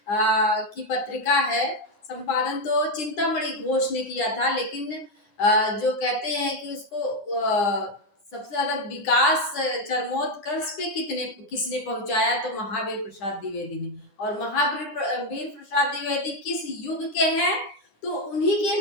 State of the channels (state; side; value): late; right; 9.9 ms